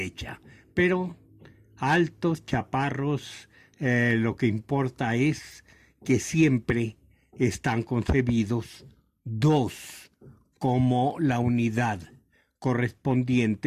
Pero altos, chaparros, lo que importa es que siempre están concebidos dos como la unidad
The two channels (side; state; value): both; identical; correlation 1.00